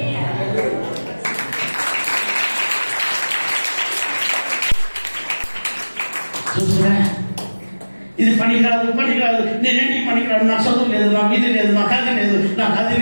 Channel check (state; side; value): inverted; both; correlation -1.00